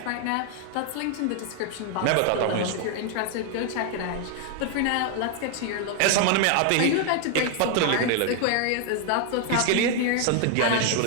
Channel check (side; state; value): both; different; correlation 0.00